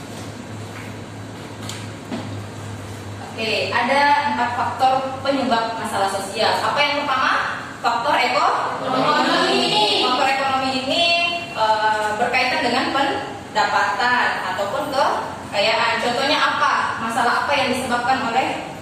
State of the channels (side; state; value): both; identical; correlation 1.00